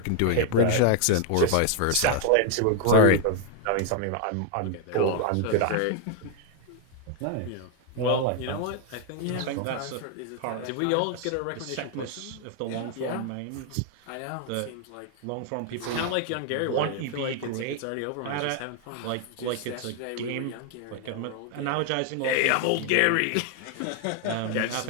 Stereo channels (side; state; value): both; different; correlation 0.00